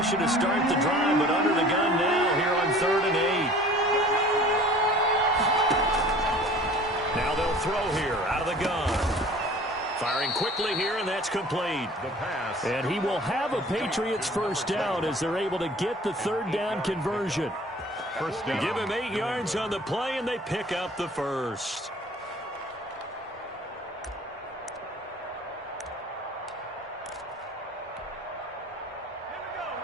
to start the drive, but under the gun now here on 3rd and 8. Now they'll throw here out of the gun. Firing quickly here, and that's complete. And he will have a Patriots first down as they're able to get the 3rd down conversion. Give him 8 yards on the play, and they pick up the first.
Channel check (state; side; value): normal; both; correlation 0.47